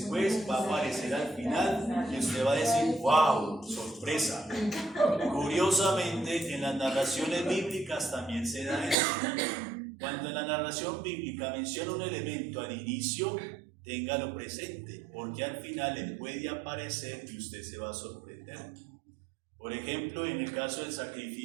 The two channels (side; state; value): left; drops out; at 9.0 s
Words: va a aparecer al final y usted va a decir, wow, sorpresa. Curiosamente, en las narraciones bíblicas también se da eso. Cuando en la narración bíblica menciona un elemento al inicio, téngalo presente, porque al final le puede aparecer y usted se va a sorprender. Por ejemplo, en el caso del